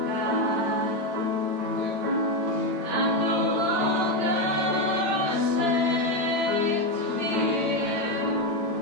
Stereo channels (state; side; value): late; left; 8.8 ms